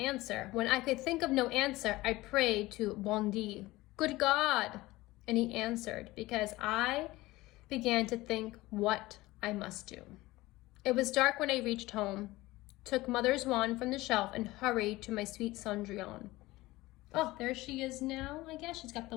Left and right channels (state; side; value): quieter; right; 19.0 dB